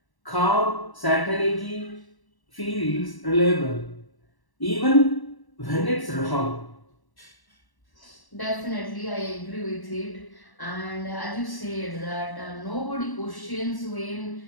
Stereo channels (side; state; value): right; late; 1.1 ms